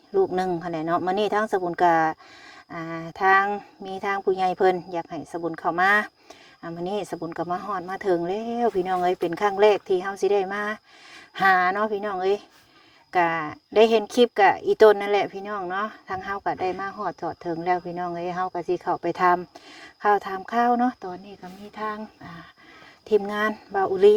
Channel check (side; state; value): both; identical; correlation 1.00